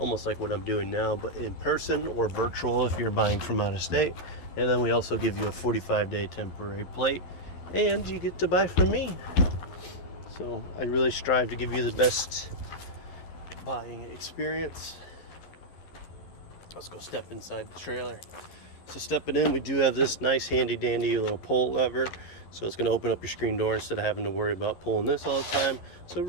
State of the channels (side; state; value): right; late; 11 ms